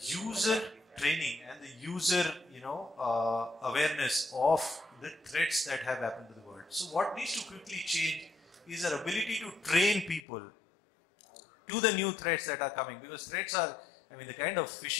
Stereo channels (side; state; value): right; drops out; at 10.2 s